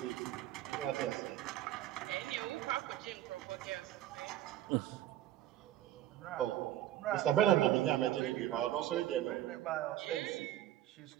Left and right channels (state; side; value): quieter; left; 12.9 dB